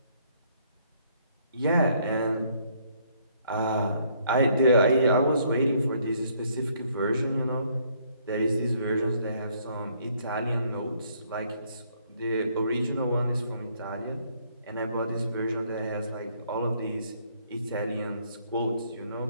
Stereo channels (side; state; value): both; inverted; correlation -0.67